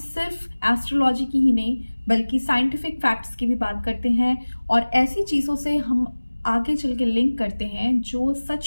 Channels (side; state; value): both; inverted; correlation -1.00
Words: एस्ट्रोलॉजी की ही नहीं बल्कि साइंटिफिक फैक्ट्स की भी बात करते हैं और ऐसी चीज़ों से हम आगे चल के लिंक करते हैं जो